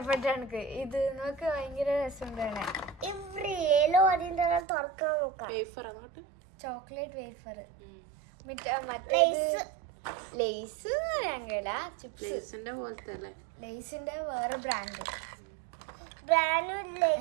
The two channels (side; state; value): left; drops out; at 4.7 s